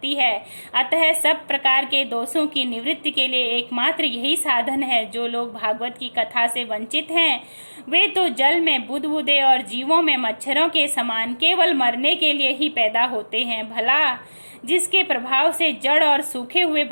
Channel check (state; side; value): inverted; both; correlation -1.00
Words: है। अतः सब प्रकार के दोषों की निवृत्ति के लिए एकमात्र यही साधन है। जो लोग भागवत की कथा से वंचित हैं वे तो जल में बुदबुदे और जीवों में मच्छरों के समान केवल मरने के लिए ही पैदा होते हैं। भला जिसके प्रभाव से जड़ और सूखे हुए